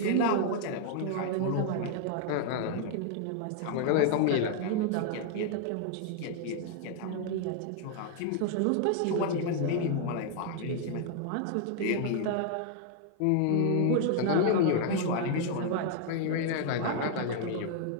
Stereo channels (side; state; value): both; different; correlation 0.00